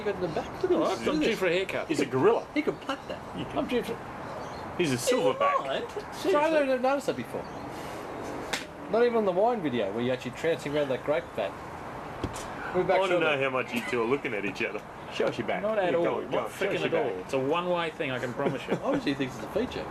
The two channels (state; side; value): identical; both; correlation 1.00